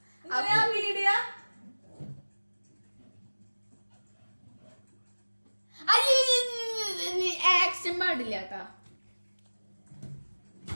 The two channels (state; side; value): inverted; both; correlation -1.00